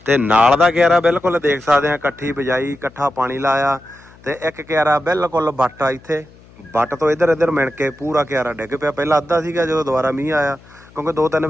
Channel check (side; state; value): left; noise; hum, 25 dB below the sound